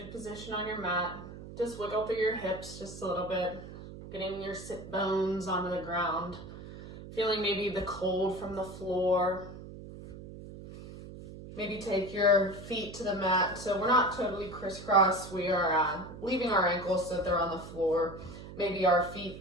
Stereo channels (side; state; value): right; noise; hum, 13 dB below the sound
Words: position on your mat. Just wiggle through your hips just a little bit, getting your sit bones onto the ground, feeling maybe the cold from the floor. Maybe take your feet to the mat. So we're not totally crisscross. We are leaving our ankles so that they're on the floor. Maybe our feet